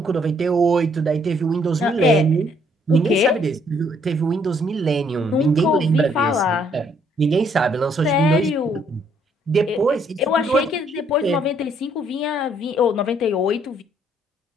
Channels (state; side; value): normal; both; correlation 0.67